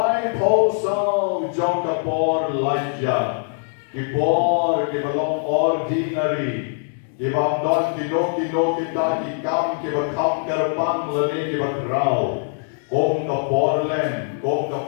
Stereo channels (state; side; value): silent; right; 63 dB below the other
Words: posaw jong kapor laja kipor kibalong ordinary kibang don kino kita kikam kibakam kerbang lani kibakraw kong kapor len kong